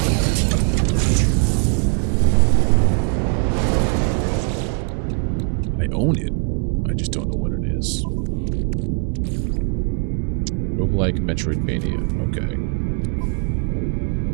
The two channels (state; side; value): quieter; left; 37.9 dB